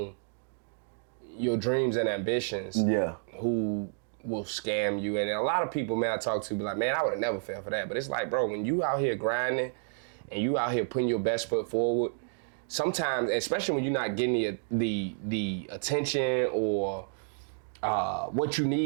your dreams and ambitions. Yeah. Who will scam you. And a lot of people, man, I talk to be like, man, I would have never fell for that. But it's like, bro, when you out here grinding and you out here putting your best foot forward, sometimes, especially when you're not getting the attention or what you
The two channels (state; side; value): silent; left; digital silence